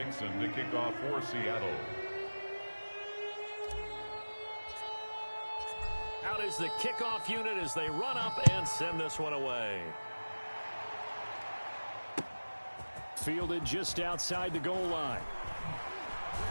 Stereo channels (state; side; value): inverted; both; correlation -1.00